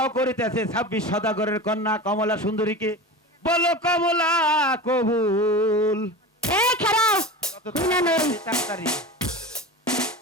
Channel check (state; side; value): normal; both; correlation 0.30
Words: করিতেছে 26 সদাগরের কন্যা কমলা সুন্দরীকে বলো কমলা কবুল এই খারাপ কত না, না। তাড়াতাড়ি